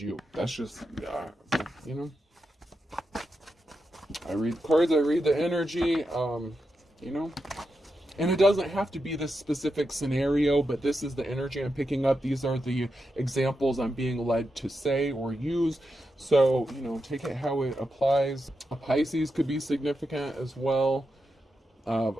you. That's just, you know. I read the cards, I read the energy, you know. And it doesn't have to be this specific scenario, but this is the energy I'm picking up. These are the examples I'm being led to say or use. So, you know, take it how it applies. A Pisces could be significant as well.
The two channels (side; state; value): both; normal; correlation 0.87